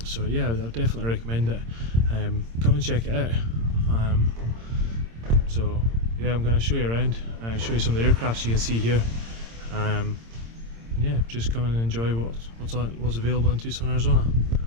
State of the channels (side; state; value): left; late; 26 ms